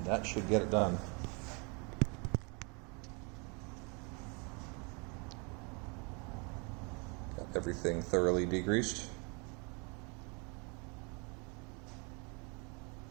that should get it done. Got everything thoroughly degreased.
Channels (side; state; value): left; quieter; 32.4 dB